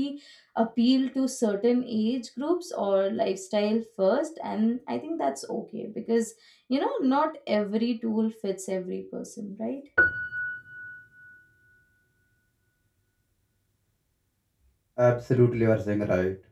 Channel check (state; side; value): identical; both; correlation 1.00